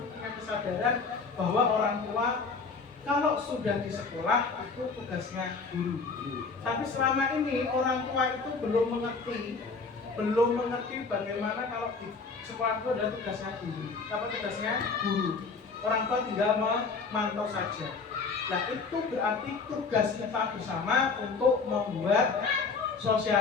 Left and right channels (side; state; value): right; quieter; 4.6 dB